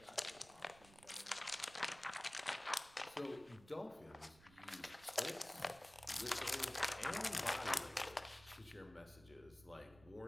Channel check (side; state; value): right; noise; rumble, 22 dB below the sound